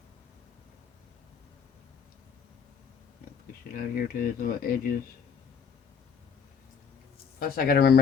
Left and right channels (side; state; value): right; quieter; 6.6 dB